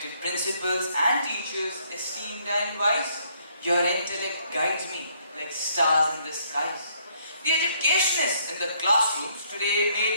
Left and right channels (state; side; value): inverted; both; correlation -0.67